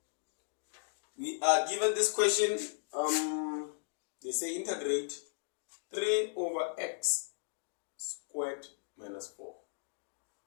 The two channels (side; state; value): right; silent; digital silence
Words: we are given this question. They say integrate 3 over x squared minus 4.